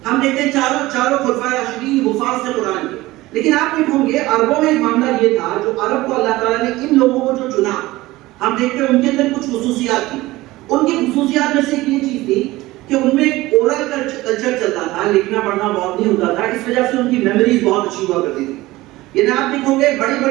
ہم دیکھتے ہیں چاروں خلفائے راشدین حفاظ تھے قرآن کے۔ لیکن آپ دیکھو گے عربوں میں ایک معاملہ یہ تھا، جو عرب کو اللہ تعالیٰ نے ان لوگوں کو جو چنا، ہم دیکھتے ہیں ان کے اندر کچھ خصوصیات تھی۔ ان کی خصوصیات میں سے یہ چیز تھی کہ ان میں اورل کلچر چلتا تھا، لکھنا پڑھنا بہت نہیں ہوتا تھا، اس وجہ سے ان کی میموریز بہت اچھی ہوا کرتی تھی۔ یعنی آپ دیکھو گے بڑی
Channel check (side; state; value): left; quieter; 18.6 dB